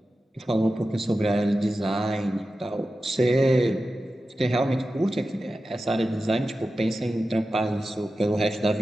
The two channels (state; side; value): normal; both; correlation 0.93